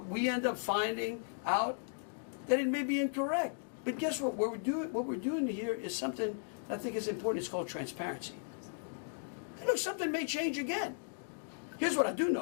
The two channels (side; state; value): right; silent; digital silence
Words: we end up finding out that it may be incorrect. But guess what? What we're doing here is something I think is important. It's called transparency. And look, something may change again. Here's what I do